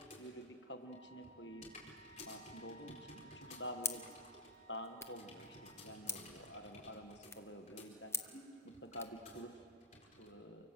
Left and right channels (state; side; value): normal; both; correlation 0.09